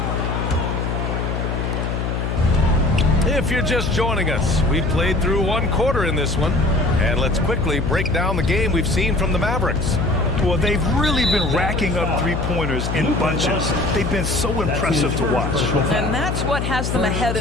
If you're just joining us, we played through one quarter in this one. And let's quickly break down the game we've seen from the Mavericks. Well, they've really been racking up three-pointers in bunches. They've been so impressive to watch. And that's what has them ahead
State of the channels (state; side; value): noise; left; hum, 2 dB below the sound